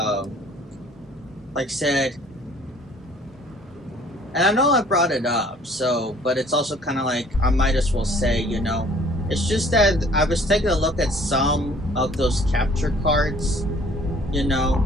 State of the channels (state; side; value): normal; both; correlation 0.55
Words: like said, and I know I brought it up, so, but it's also kind of like I might as well say, you know, it's just that I was taking a look at some of those capture cards, you know,